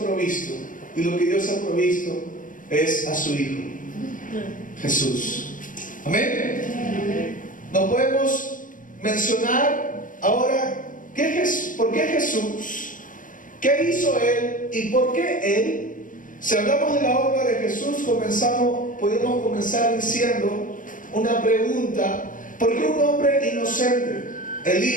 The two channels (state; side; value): late; right; 0.38 ms